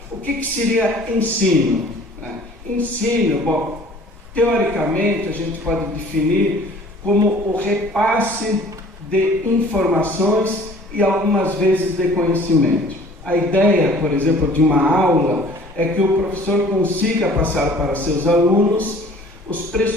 o que seria ensino? Ensino, bom, teoricamente a gente pode definir como o repasse de informações e algumas vezes de conhecimento. A ideia, por exemplo, de uma aula é que o professor consiga passar para seus alunos os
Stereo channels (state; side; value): normal; both; correlation 0.51